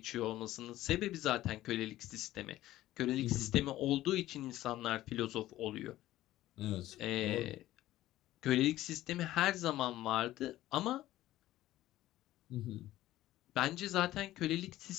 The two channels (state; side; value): quieter; right; 15.0 dB